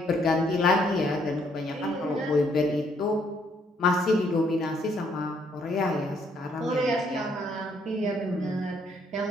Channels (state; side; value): normal; both; correlation 0.69